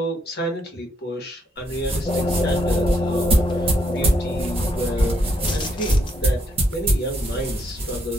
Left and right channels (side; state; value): both; normal; correlation 0.75